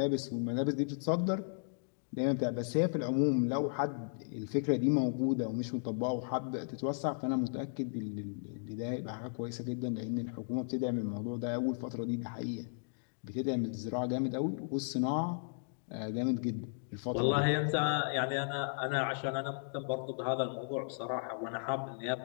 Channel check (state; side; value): silent; right; digital silence